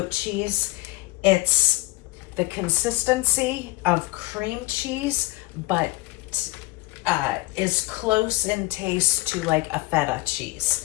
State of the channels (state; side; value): quieter; right; 21.2 dB